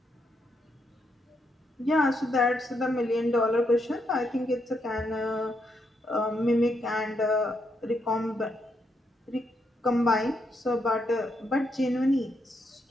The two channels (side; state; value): both; normal; correlation 0.79